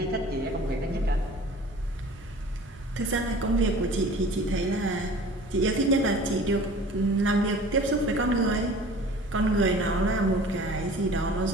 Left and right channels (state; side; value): normal; both; correlation 0.44